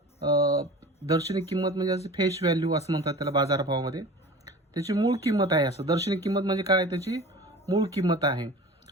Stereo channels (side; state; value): both; normal; correlation 0.39